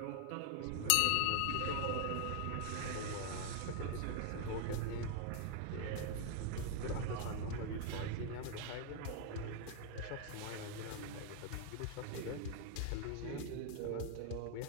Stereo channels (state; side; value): different; both; correlation 0.00